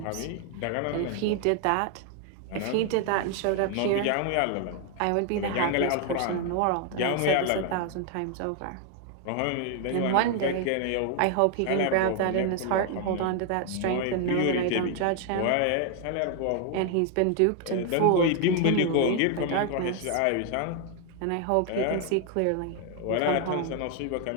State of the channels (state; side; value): different; both; correlation 0.00